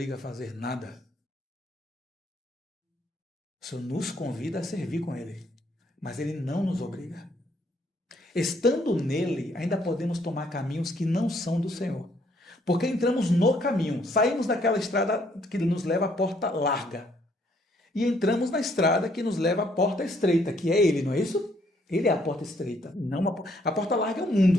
a fazer nada? O Senhor nos convida a servir com Ele, mas Ele não nos obriga. Estando nele, ainda podemos tomar caminhos que não são do Senhor. Porque entramos no caminho, saímos daquela estrada que nos leva à porta larga. E entramos na estrada que nos leva à porta estreita, que é ele, não é isso? Ele é a porta estreita, não a porta larga é o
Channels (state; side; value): normal; both; correlation 0.68